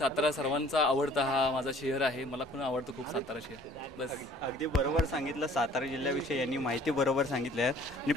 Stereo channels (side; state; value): both; normal; correlation 0.54